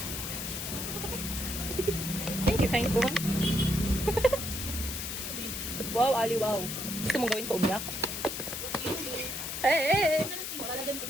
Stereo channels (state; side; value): noise; left; hiss, 5 dB below the sound